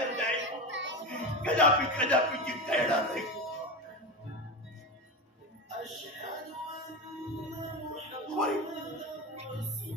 नाही, कदापि जिंकता येणार नाही।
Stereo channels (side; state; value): both; normal; correlation 0.20